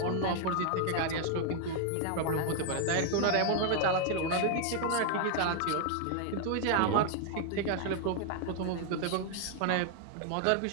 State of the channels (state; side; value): different; both; correlation 0.00